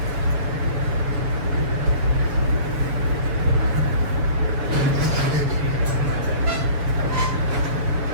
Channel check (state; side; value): late; left; 7.0 ms